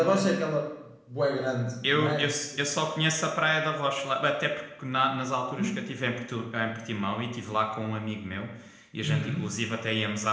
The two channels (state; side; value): identical; both; correlation 1.00